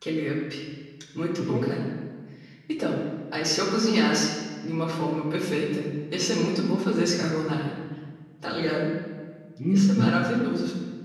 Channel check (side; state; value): both; identical; correlation 1.00